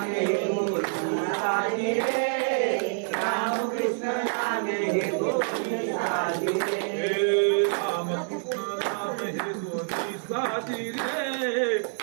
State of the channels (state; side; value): silent; left; 60 dB below the other